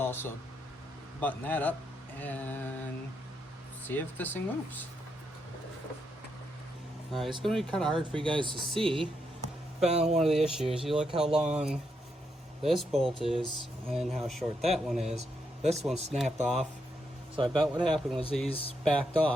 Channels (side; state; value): both; normal; correlation 0.80